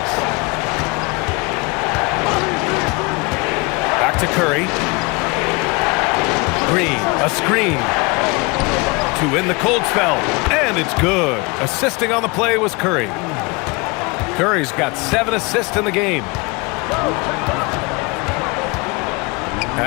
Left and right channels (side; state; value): right; quieter; 27.4 dB